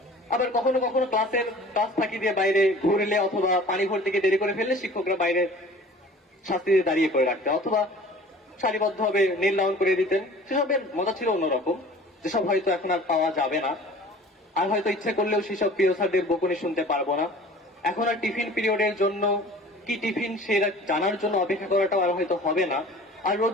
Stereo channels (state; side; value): normal; both; correlation 0.45